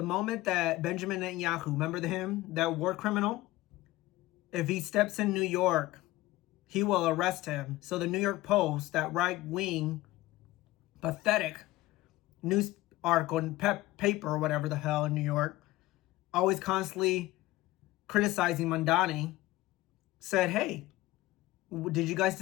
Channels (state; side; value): quieter; right; 18.0 dB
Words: moment that Benjamin Netanyahu, remember him, that war criminal, if he steps in New York, he will arrest him. So the New York Post, that right-wing, pathetic news article and paper or whatever the hell in New York, always constantly criticizing Mamdani, said, hey, did you guys